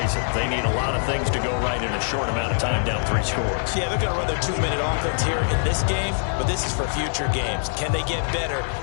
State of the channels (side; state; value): right; silent; digital silence